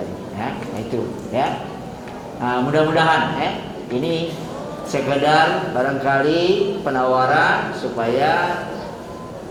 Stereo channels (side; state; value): both; identical; correlation 1.00